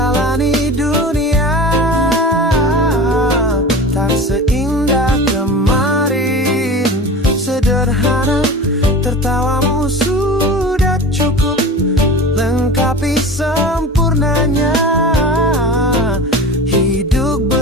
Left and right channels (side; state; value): both; normal; correlation 0.34